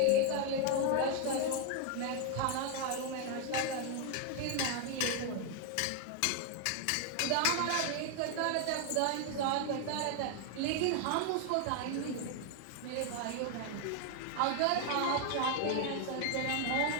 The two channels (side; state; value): both; different; correlation 0.01